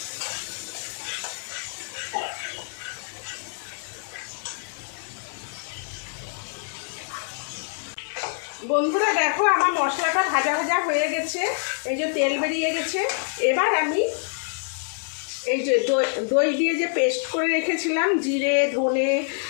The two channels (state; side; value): silent; right; 61 dB below the other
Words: বন্ধুরা দেখো, আমার মশলাটা ভাজা ভাজা হয়ে গেছে। এই যে তেল বেরিয়ে গেছে। এবার আমি এই যে দই দিয়ে যে পেস্ট করে রেখেছিলাম, জিরে, ধনে,